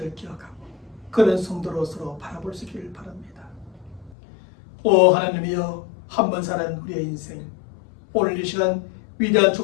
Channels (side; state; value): right; drops out; at 4.1 s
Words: 기억하고 그런 성도로 서로 바라볼 수 있기를 바랍니다. 오 하나님이여, 한 번 사는 우리의 인생, 오늘 이 시간 위대한